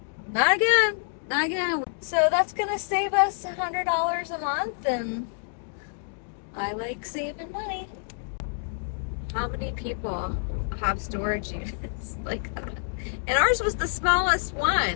Not again. Not again. So that's gonna save us $100 a month, and I like saving money. How many people have storage units like that? And ours was the smallest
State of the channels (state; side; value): silent; right; digital silence